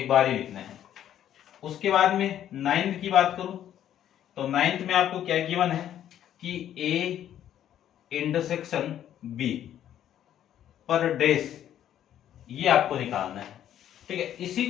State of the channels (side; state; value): right; quieter; 10.9 dB